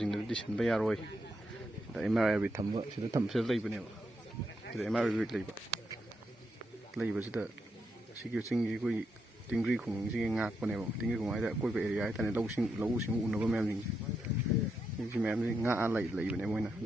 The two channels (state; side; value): normal; both; correlation 0.82